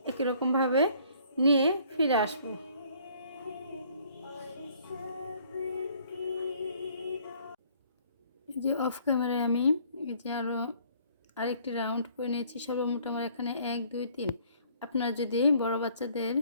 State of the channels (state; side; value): inverted; both; correlation -0.60